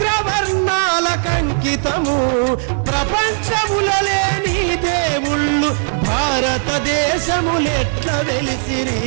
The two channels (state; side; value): silent; left; digital silence